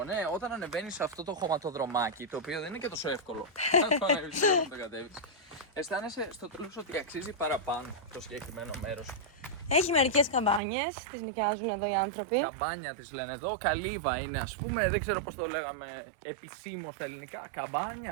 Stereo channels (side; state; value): left; drops out; at 10.6 s